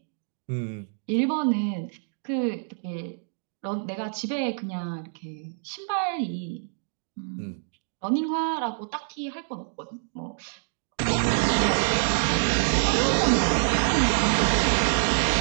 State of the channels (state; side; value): silent; left; digital silence